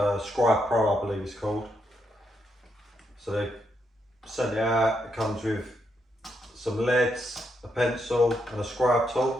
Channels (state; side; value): normal; both; correlation 0.79